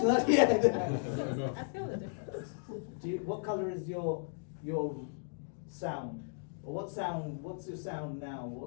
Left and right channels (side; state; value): right; silent; digital silence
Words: Not yet. I feel the difference. What color is your sound? Or what's your sound now?